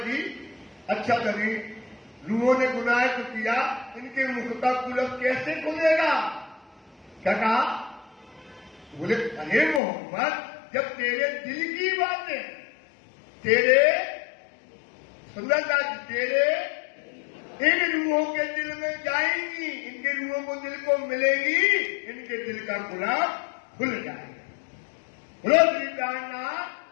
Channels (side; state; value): right; drops out; at 9.8 s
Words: अच्छा कभी रूहों ने गुनाह तो किया, इनके मुख का कुलफ कैसे खुलेगा? क्या कहा? बोले अरे मोहम्मद जब तेरे दिल की बातें, तेरे सुंदरता तेरे इन रूहों के दिल में जाएंगी, इनके रूहों को दिल को मिलेगी, इनके दिल का कुलफ खुल जाएगा। बोलो श्री प्राणनाथ।